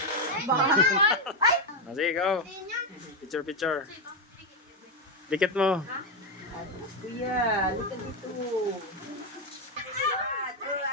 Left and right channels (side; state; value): both; normal; correlation 0.05